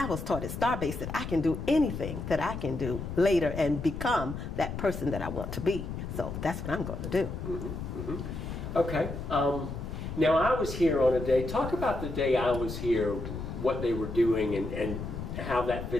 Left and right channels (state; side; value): noise; left; rumble, 7 dB below the sound